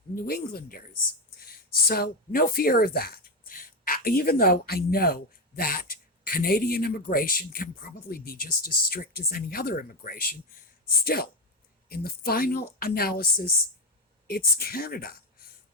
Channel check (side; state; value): both; normal; correlation 0.11